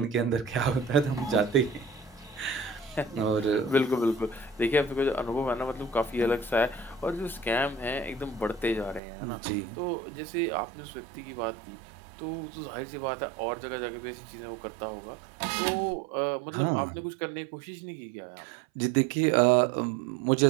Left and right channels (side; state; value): left; drops out; at 9.0 s